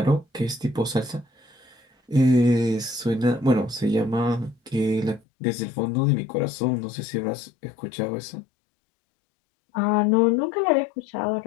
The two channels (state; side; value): drops out; right; at 5.2 s